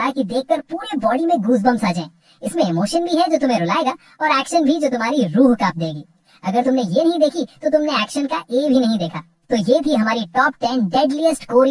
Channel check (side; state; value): both; identical; correlation 1.00